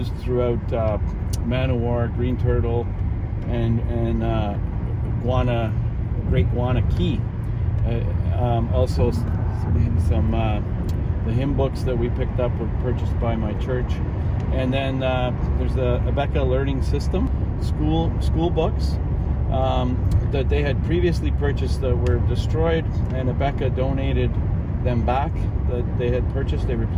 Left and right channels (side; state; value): both; identical; correlation 1.00